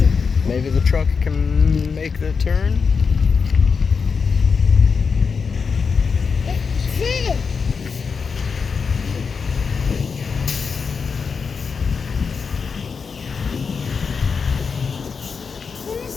maybe the truck can make the turn? It did. Let me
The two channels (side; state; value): right; quieter; 5.5 dB